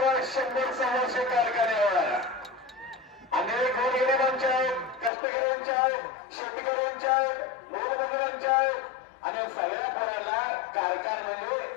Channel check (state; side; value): drops out; right; at 5.1 s